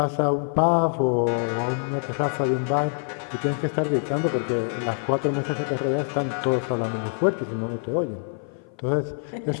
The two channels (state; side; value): silent; right; 56 dB below the other